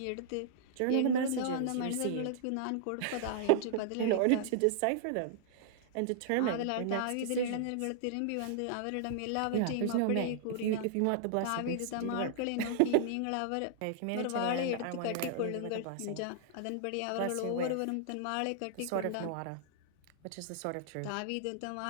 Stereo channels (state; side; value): different; both; correlation -0.01